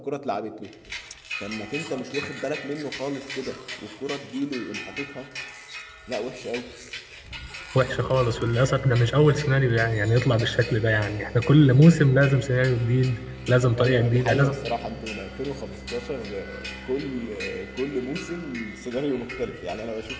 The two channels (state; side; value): identical; both; correlation 1.00